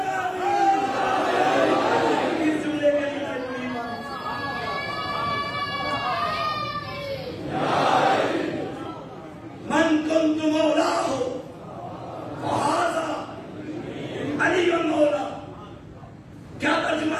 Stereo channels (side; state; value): both; identical; correlation 1.00